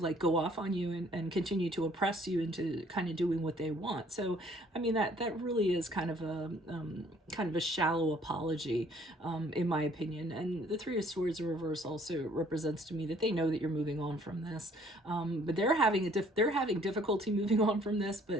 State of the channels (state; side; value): normal; both; correlation 0.60